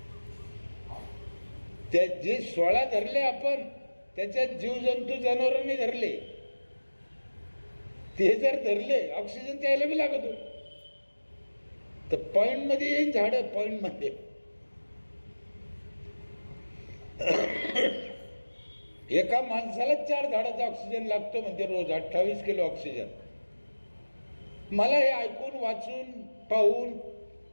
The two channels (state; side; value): inverted; both; correlation -1.00